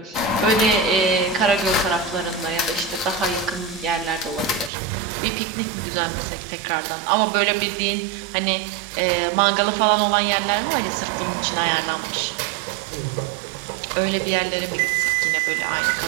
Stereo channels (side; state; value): left; drops out; at 4.7 s